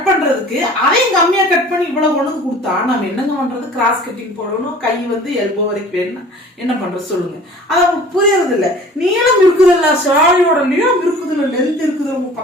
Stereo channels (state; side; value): normal; both; correlation 0.46